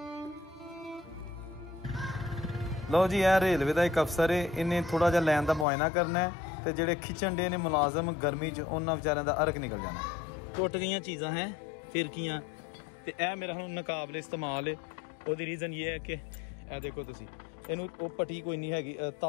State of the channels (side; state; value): right; drops out; at 5.7 s